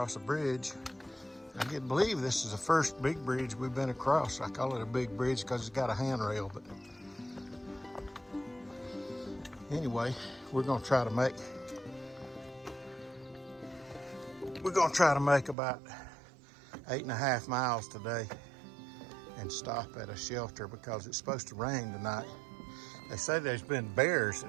a bridge. I can't believe this is the first big bridge we've been across. I call it a big bridge because it's got a handrail, but anyway, we're gonna try to make about 8.5 miles today and stop at a shelter because it's supposed to rain tonight. They say there's been bears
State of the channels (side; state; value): left; drops out; at 15.6 s